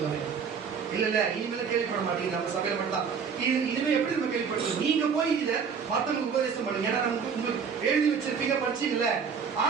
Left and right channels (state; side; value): quieter; left; 6.4 dB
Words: இல்ல இனிமேல கேள்விப்பட மாட்டீங்க. நம்ம சபையில மட்டும் இனிமே எப்படி நம்ம கேள்விப்பட்டோம்? நீங்க போய் இத மத்தவங்களுக்கு உபதேசம் பண்ணுங்க. ஏன்னா நம்ம உங்களுக்கு எழுதி வச்சிருப்பீங்க, படிச்சீங்கல்ல.